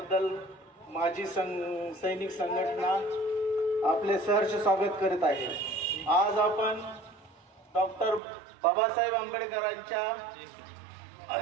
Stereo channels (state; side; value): drops out; left; at 8.2 s